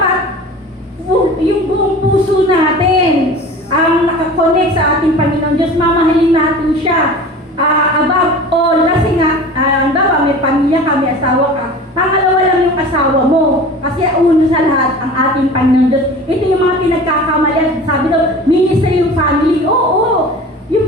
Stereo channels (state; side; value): normal; both; correlation 0.38